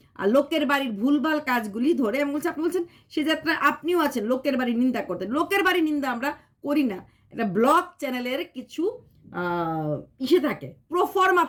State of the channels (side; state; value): both; identical; correlation 1.00